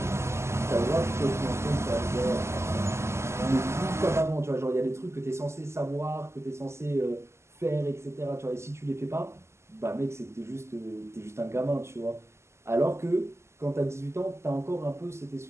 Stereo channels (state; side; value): late; left; 0.13 ms